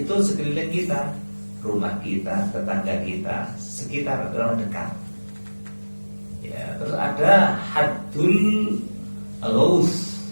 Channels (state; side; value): inverted; both; correlation -1.00